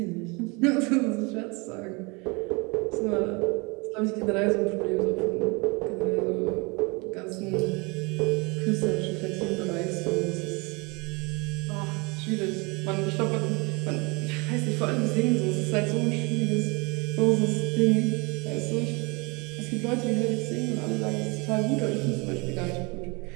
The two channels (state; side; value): quieter; left; 28.4 dB